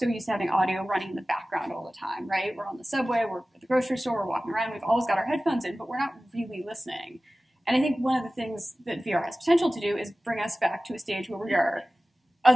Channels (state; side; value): normal; both; correlation 0.97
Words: used to having audio running in the background all the time, right? We're on the subway, we're at the grocery store, we're walking around, we've always got our headphones in, but we're not really listening. And I think one of the things that VR has potential to do is bring us back to a stage where